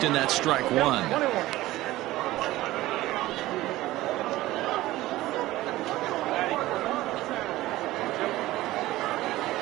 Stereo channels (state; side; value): quieter; left; 17.0 dB